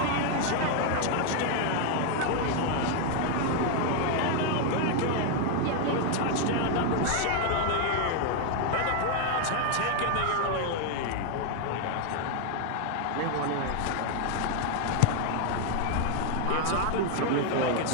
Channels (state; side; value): different; both; correlation 0.00